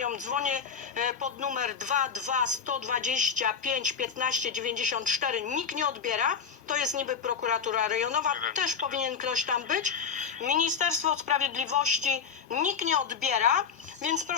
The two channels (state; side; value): quieter; right; 6.6 dB